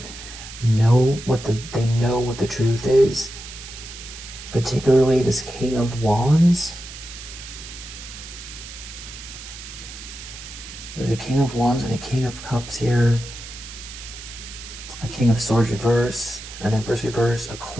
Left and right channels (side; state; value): right; noise; hiss, 13 dB below the sound